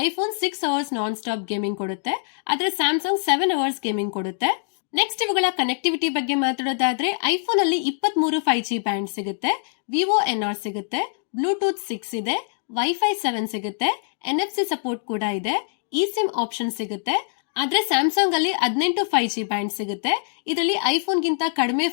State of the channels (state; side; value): silent; right; digital silence